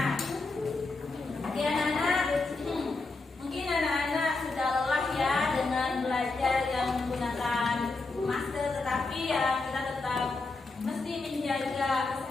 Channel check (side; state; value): right; quieter; 3.6 dB